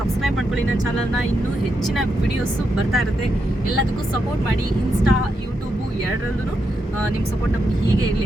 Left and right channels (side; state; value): both; normal; correlation 0.83